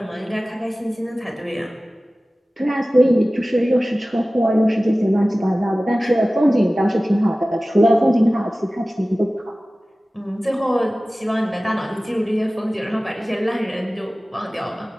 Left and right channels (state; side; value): normal; both; correlation 0.97